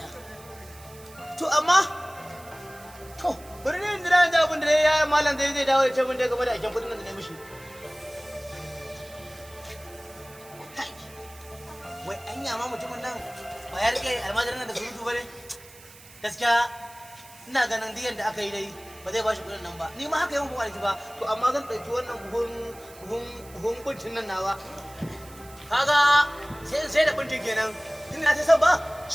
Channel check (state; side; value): noise; right; hiss, 21 dB below the sound